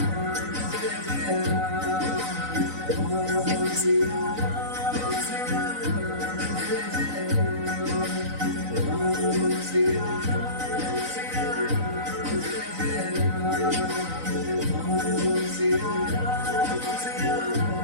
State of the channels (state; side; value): late; left; 3.9 ms